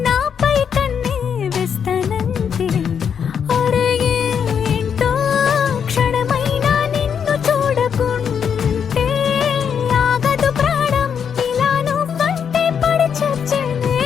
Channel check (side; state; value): right; quieter; 7.4 dB